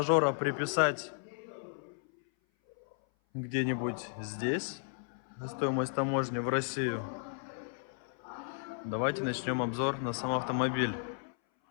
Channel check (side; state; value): right; silent; 55 dB below the other